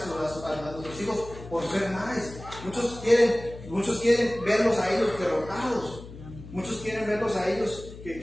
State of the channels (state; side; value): noise; left; hum, 15 dB below the sound